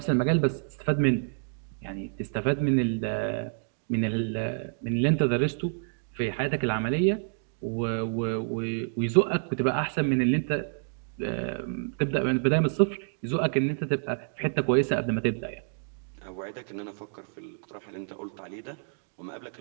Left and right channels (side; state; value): left; silent; digital silence